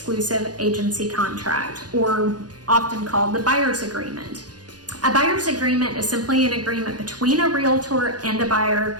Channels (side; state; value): left; late; 0.69 ms